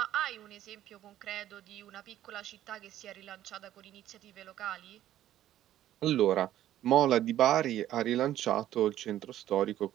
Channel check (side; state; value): left; quieter; 12.6 dB